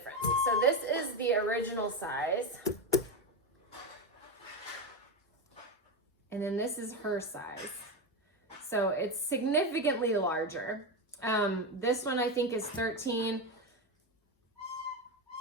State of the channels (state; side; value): normal; both; correlation 0.14